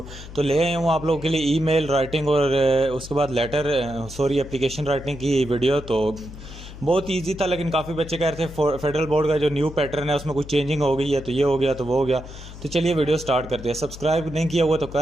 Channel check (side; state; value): left; noise; hum, 14 dB below the sound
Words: तो ले आया हूँ आप लोगों के लिए ईमेल राइटिंग और उसके बाद लेटर एप्लीकेशन राइटिंग की वीडियो। तो बहुत इजी था, लेकिन काफ़ी बच्चे कह रहे थे फेडरल बोर्ड का जो न्यू पैटर्न है उसमें कुछ चेंजिंग हो गई है, तो ये हो गया तो वो हो गया। तो चलिए वीडियो स्टार्ट करते हैं। सब्सक्राइब नहीं किया हुआ तो